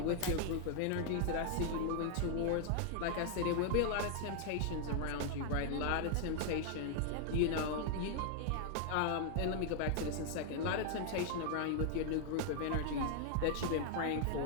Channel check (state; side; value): different; both; correlation 0.00